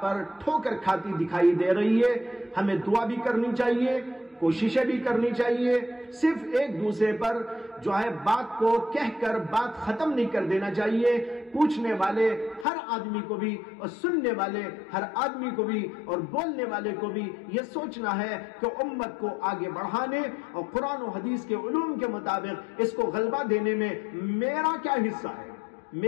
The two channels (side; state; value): right; drops out; at 12.7 s